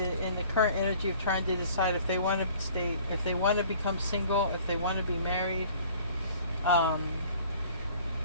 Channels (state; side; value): inverted; both; correlation -0.52